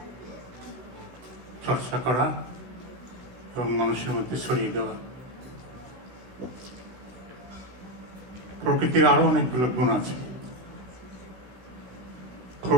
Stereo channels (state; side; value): late; left; 16 ms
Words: চর্চা করা এবং মানুষের মধ্যে ছড়িয়ে দেওয়া। প্রকৃতির আরো অনেকগুলো গুণ আছে।